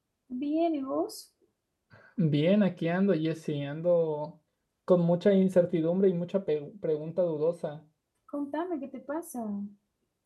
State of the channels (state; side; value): identical; both; correlation 1.00